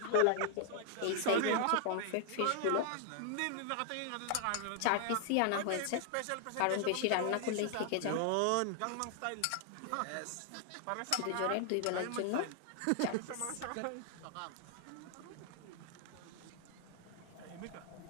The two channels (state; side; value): different; both; correlation 0.00